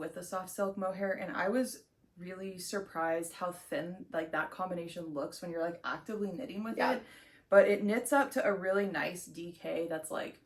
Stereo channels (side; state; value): both; identical; correlation 1.00